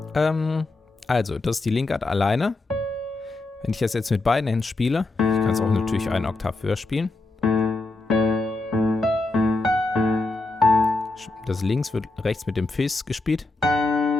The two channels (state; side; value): quieter; right; 3.2 dB